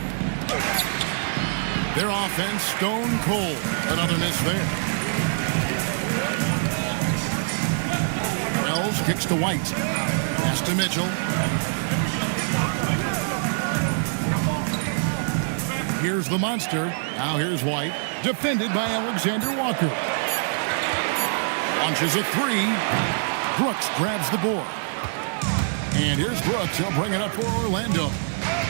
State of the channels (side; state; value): left; silent; digital silence